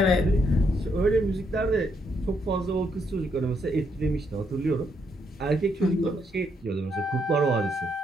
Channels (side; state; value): both; normal; correlation 0.75